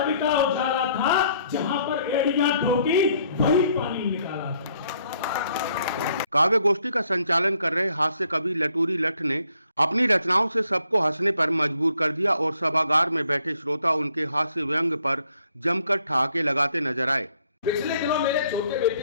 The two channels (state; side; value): inverted; both; correlation -0.67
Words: का उजाला था, जहां पर एड़ियां ठोकी वही पानी निकाला था। काव्य गोष्ठी का संचालन कर रहे हास्य कवि लटूरी लट्ट ने अपनी रचनाओं से सबको हंसने पर मजबूर कर दिया और सभागार में बैठे श्रोता उनके हास्य व्यंग पर जमकर ठहाके लगाते नजर आए। पिछले दिनों मेरे छोटे